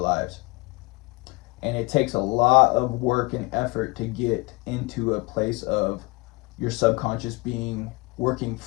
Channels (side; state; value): right; quieter; 25.8 dB